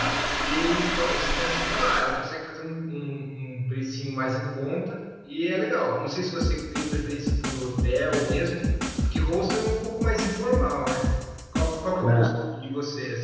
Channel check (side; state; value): both; identical; correlation 1.00